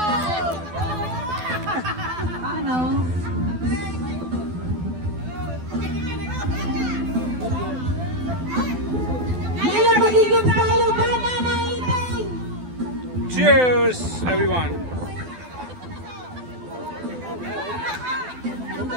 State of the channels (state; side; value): late; left; 12 ms